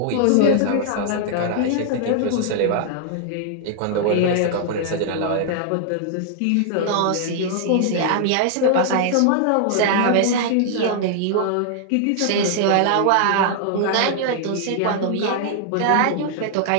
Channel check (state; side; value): different; both; correlation -0.01